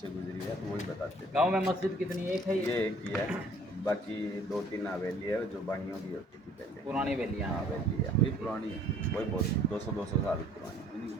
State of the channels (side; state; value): both; normal; correlation 0.56